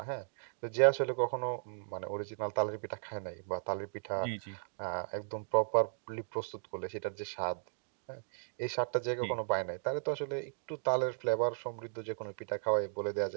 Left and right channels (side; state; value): left; silent; digital silence